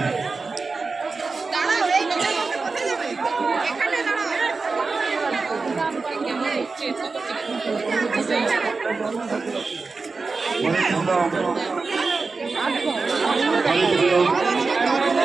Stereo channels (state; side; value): quieter; left; 4.2 dB